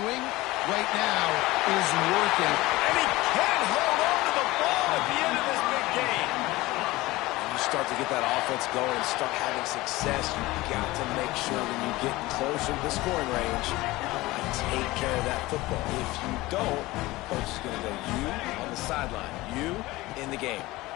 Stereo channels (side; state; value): right; quieter; 19.5 dB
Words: right now is working. And he can't hold on to the ball at the end of this big game. You start to get that offense going and start having success, you've got to make sure when you get closer to the scoring range, take care of that football. If you don't, coach is going to go you on the sideline, you in the game.